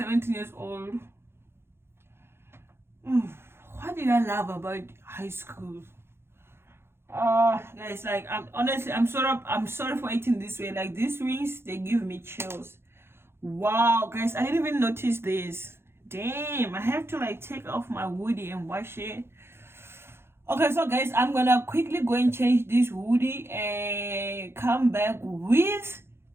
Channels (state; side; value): late; left; 0.12 ms